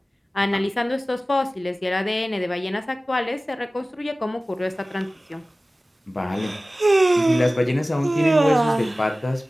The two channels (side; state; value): both; normal; correlation 0.97